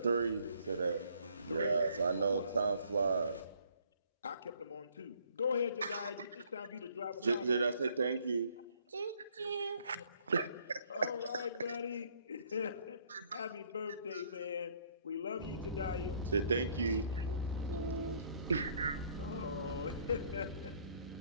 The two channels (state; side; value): inverted; both; correlation -0.63